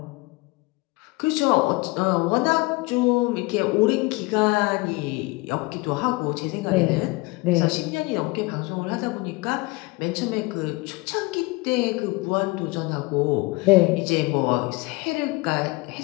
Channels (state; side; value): quieter; right; 24.1 dB